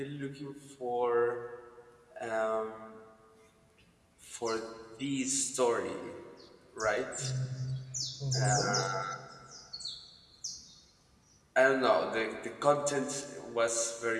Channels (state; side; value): identical; both; correlation 1.00